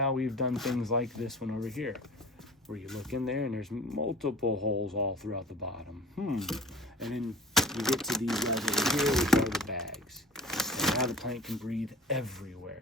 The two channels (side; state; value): both; normal; correlation 0.41